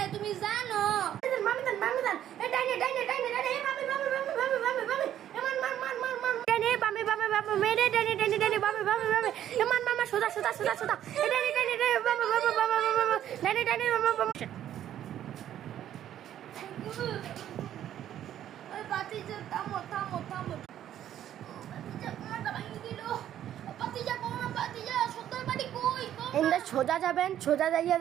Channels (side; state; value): left; quieter; 11.2 dB